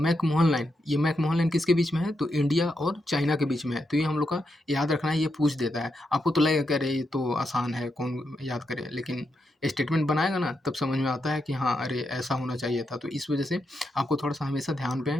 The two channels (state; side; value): normal; both; correlation 0.83